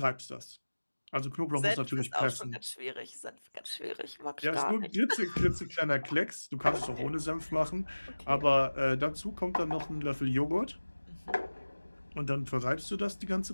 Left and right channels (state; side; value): inverted; both; correlation -1.00